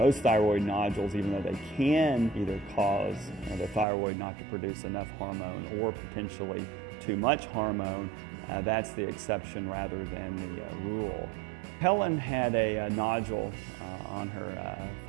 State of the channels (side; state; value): left; drops out; at 3.9 s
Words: thyroid nodules, even though they can either cause the thyroid not to produce enough hormone or potentially too much hormone, that's the exception rather than the rule. Helen had a nodule on her